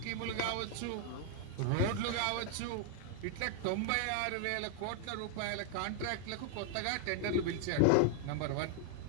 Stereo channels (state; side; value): different; both; correlation 0.00